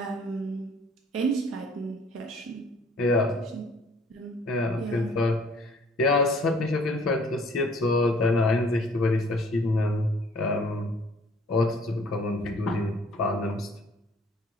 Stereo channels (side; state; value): both; normal; correlation 0.57